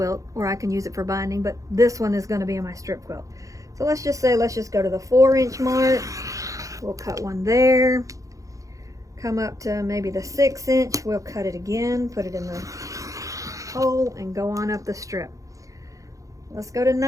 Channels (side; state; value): left; late; 0.16 ms